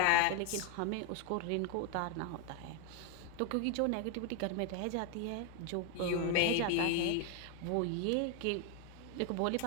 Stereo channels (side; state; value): both; different; correlation 0.01